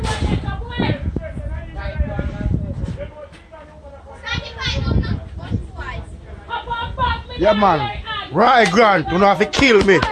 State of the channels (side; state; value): both; identical; correlation 1.00